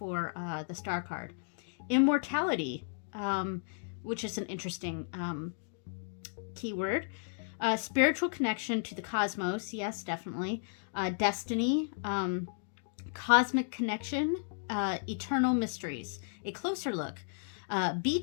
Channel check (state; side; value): silent; right; digital silence